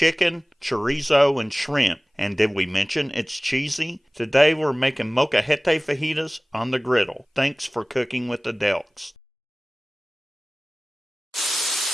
chorizo, and shrimp. And did we mention it's cheesy? Today we're making Molcajete fajitas on the griddle. Thanks for cooking with the Deluxe.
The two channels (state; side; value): normal; both; correlation 0.98